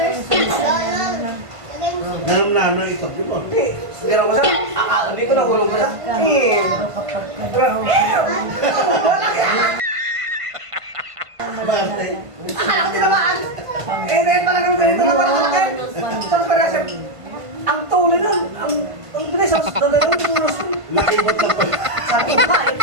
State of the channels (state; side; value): late; left; 1.5 ms